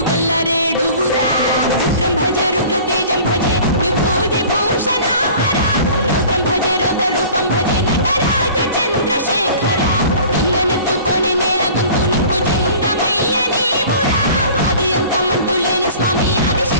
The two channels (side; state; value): both; inverted; correlation -0.45